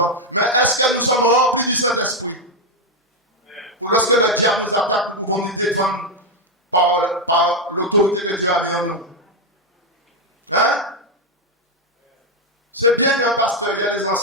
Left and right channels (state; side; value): normal; both; correlation 0.03